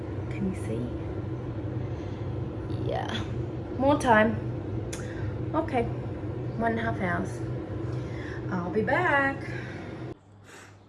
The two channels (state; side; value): identical; both; correlation 1.00